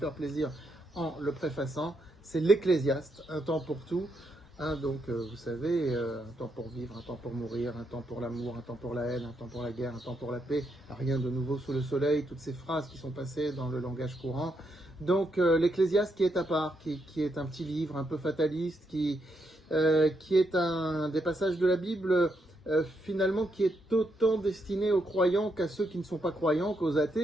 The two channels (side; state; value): both; normal; correlation 0.79